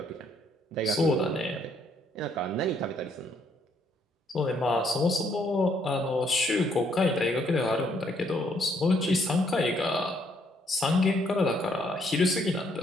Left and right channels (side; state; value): both; normal; correlation 0.69